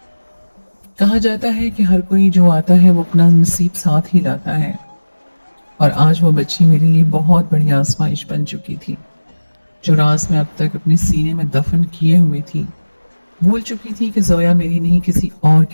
कहा जाता है कि हर कोई जो आता है वो अपना नसीब साथ ही लाता है, और आज वो बच्ची मेरे लिए बहुत बड़ी आजमाइश बन चुकी थी। जो राज मैं अब तक अपने सीने में दफन किए हुए थी, भूल चुकी थी कि जोया मेरी नहीं किसी और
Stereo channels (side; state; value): both; inverted; correlation -1.00